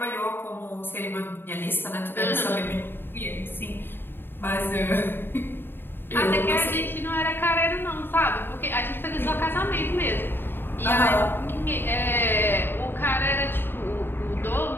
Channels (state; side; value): late; right; 0.10 ms